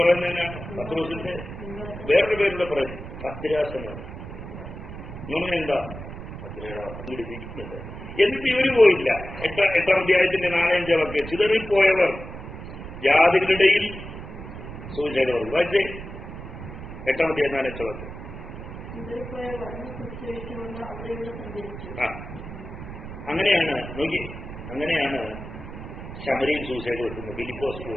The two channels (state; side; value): noise; right; rumble, 11 dB below the sound